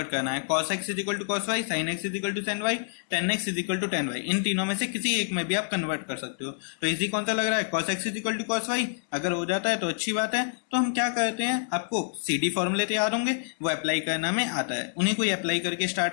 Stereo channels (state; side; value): silent; right; digital silence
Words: करना है. cos x is equal to cos y, sin x is equal to sin y, tan x is equal to tan y. इन तीनों में से किसी एक में भी आप कन्वर्ट कर सकते हो. तो इजी कौन सा लग रहा है? cos x is equal to cos y. अगर हो जाता है तो अच्छी बात है. तो हम क्या करते हैं, आपको CD फॉर्मूले तैयार होंगे, वो अप्लाई करना में आता है, उन्हीं को अप्लाई करके